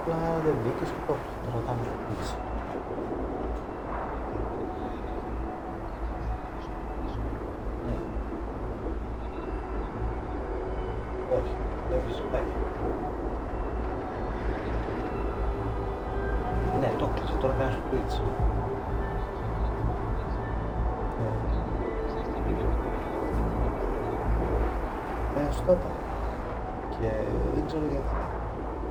Απλά δεν μπήκες και το ρωτάμε στο πίτσι. Όχι, δεν φυσικά. Ναι, το κλείσε, τώρα κάνεις στο πίτσι. Στο είπα. Και δεν ξέρω γιατί.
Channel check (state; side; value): identical; both; correlation 1.00